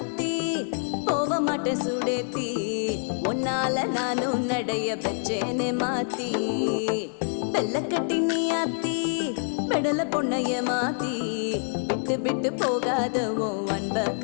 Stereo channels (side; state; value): right; silent; 61 dB below the other